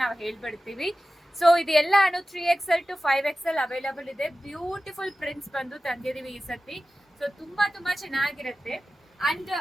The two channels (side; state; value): both; normal; correlation 0.95